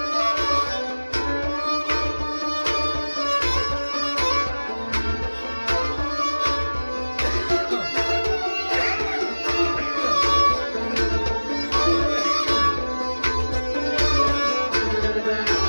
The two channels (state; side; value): inverted; both; correlation -1.00